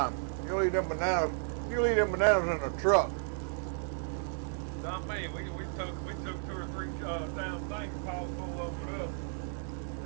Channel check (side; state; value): left; silent; 56 dB below the other